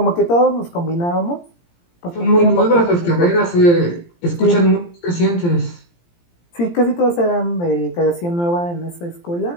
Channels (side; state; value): right; late; 17 ms